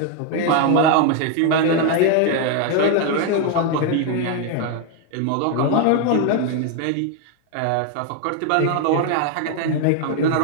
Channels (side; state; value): both; different; correlation 0.01